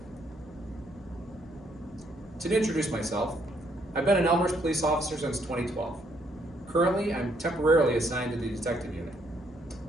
To introduce myself, I've been an Elmhurst police officer since 2012. Currently, I'm temporarily assigned to the detective unit.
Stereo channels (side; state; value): both; normal; correlation 0.70